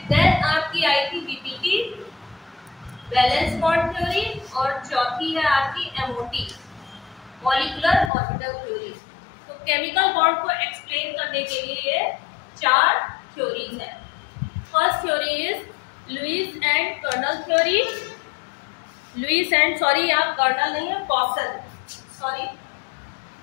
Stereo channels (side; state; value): right; drops out; at 8.1 s